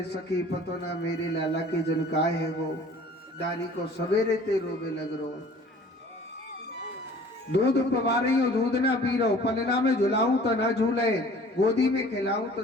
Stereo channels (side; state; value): both; normal; correlation 0.49